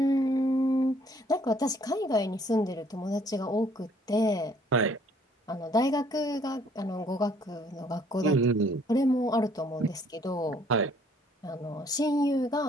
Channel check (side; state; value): both; normal; correlation 0.61